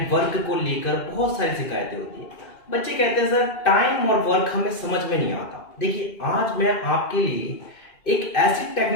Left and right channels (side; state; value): right; late; 2.5 ms